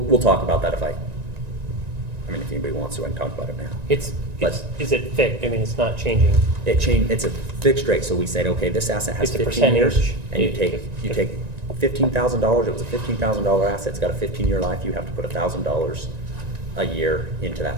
talk about that if anybody wants to, I can talk about it now. But- Is it fixed? I mean, it's not changing. It's a fixed rate, so we said, okay, this asset has It's a 15 years, percentage. and you take $15,000, it was a $15,000 asset, it's got a 15-year life, you have to put $1,000 a year into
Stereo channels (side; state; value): left; late; 1.9 ms